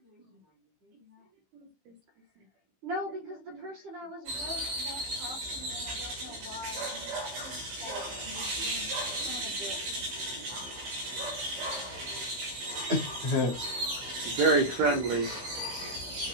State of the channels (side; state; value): left; late; 15 ms